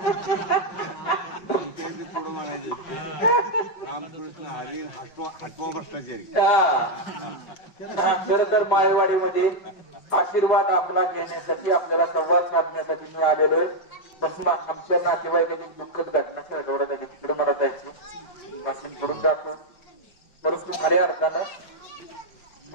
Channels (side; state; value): right; late; 5.3 ms